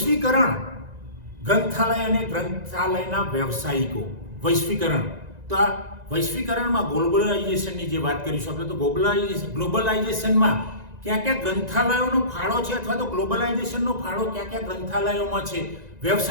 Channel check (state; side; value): late; left; 1.9 ms